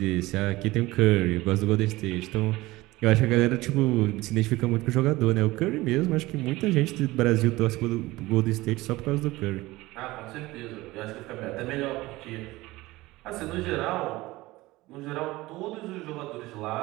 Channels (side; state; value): left; quieter; 19.4 dB